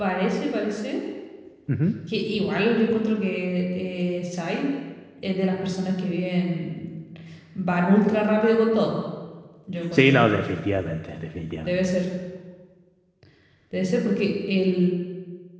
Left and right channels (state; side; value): identical; both; correlation 1.00